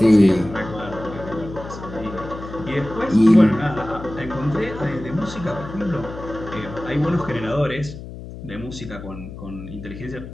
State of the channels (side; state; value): left; noise; hum, 12 dB below the sound